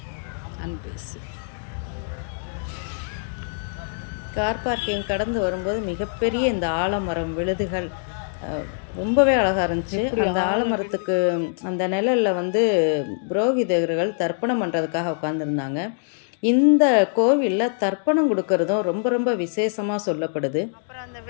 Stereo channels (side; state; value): right; silent; digital silence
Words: அன்பேசி. கார் பார்க்கிங் கடந்து வரும்போது மிகப்பெரிய இந்த ஆலமரம் விழுதுகள் ரொம்பவே அழகாக இருந்துச்சு. அந்த ஆலமரத்துக்கு அந்த நிழலில் புரோகிதர்கள் தர்ப்பணம் பண்ணுறதுக்காக உட்காந்துருந்தாங்க. இந்த கோவிலில் தர்ப்பணம் கொடுக்கறதும் ரொம்ப ரொம்ப விசேஷமாக சொல்லப்படுது. அப்புறம் அந்த